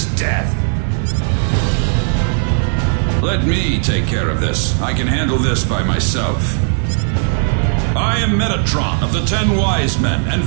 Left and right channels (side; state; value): left; silent; 68 dB below the other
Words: death. Let me take care of this. I can handle this by myself. I am Metatron of the 10 Wise Men, and